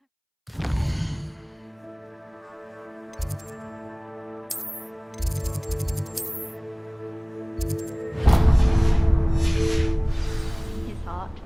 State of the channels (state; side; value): identical; both; correlation 1.00